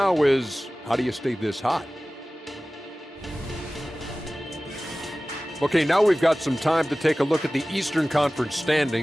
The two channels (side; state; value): both; normal; correlation 0.97